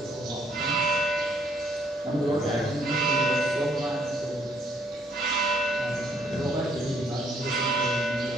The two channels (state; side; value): normal; both; correlation 0.67